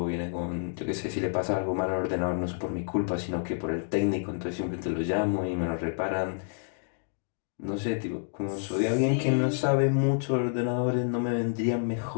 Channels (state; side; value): silent; right; digital silence